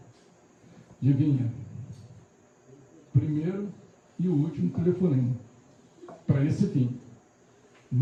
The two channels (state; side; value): identical; both; correlation 1.00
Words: Adivinha? Primeiro e o último telefonema. Para esse fim.